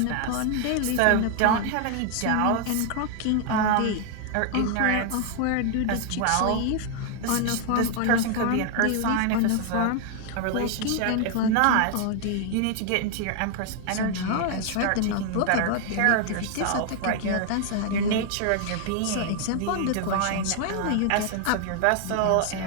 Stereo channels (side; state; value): both; different; correlation 0.00